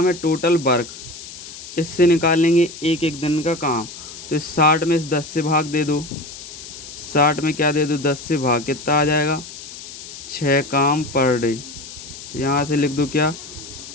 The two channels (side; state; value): left; noise; hiss, 13 dB below the sound